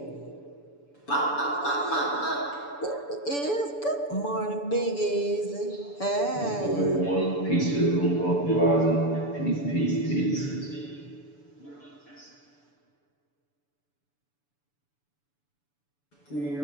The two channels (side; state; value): right; late; 6.9 ms